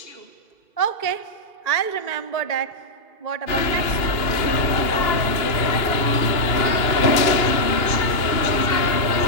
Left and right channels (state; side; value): late; right; 2.8 ms